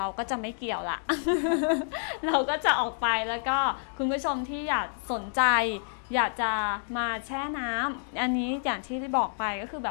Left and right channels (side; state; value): right; silent; digital silence